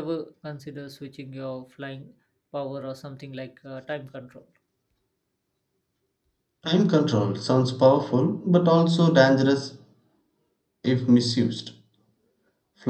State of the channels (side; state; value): both; identical; correlation 1.00